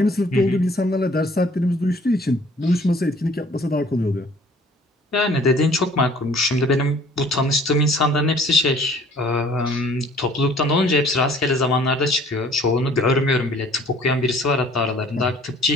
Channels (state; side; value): normal; both; correlation 0.54